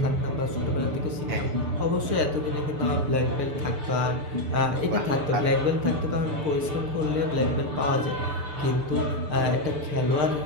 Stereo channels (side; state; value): left; late; 6.6 ms